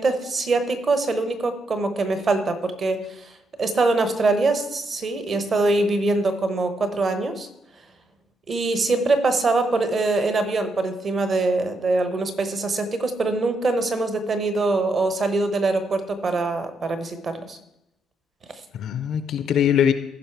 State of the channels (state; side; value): normal; both; correlation 0.78